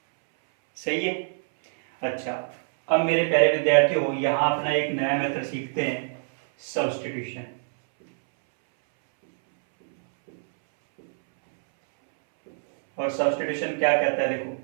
सही है। अच्छा, अब मेरे प्यारे विद्यार्थियों यहां अपना एक नया मेथड सीखते हैं, सब्स्टिट्यूशन। और सब्स्टिट्यूशन क्या कहता है देखो,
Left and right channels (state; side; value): silent; left; 62 dB below the other